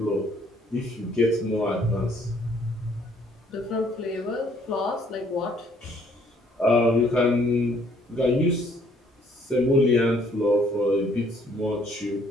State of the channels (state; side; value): normal; both; correlation 0.63